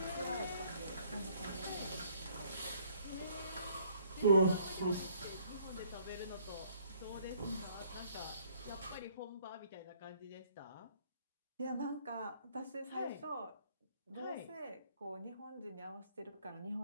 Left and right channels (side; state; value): both; inverted; correlation -0.62